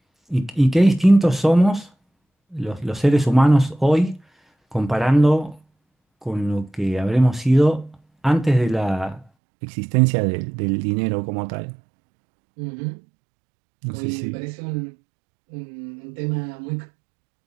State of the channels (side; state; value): left; drops out; at 9.2 s